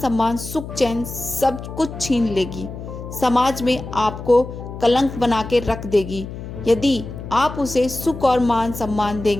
सुख चैन सब कुछ छीन लेगी। समाज में आपको कलंक बना के रख देगी। यदि आप उसे सुख और मान सम्मान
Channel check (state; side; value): noise; left; hum, 10 dB below the sound